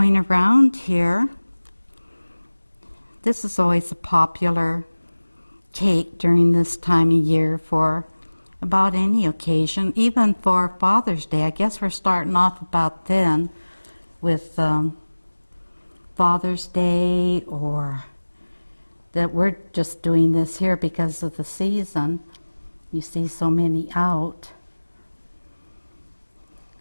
around here. This is always a popular cake during this time of year for about any occasion, even for Father's Day. I guess we're starting off about then with Father's Day, or that we're just doing this here because of the season. You see so many out.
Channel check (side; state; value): both; inverted; correlation -1.00